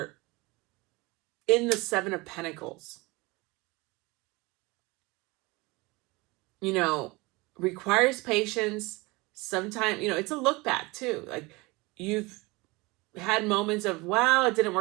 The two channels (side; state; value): left; quieter; 24.0 dB